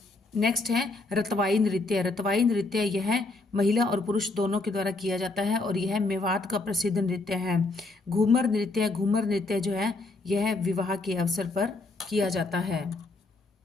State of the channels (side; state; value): right; quieter; 3.2 dB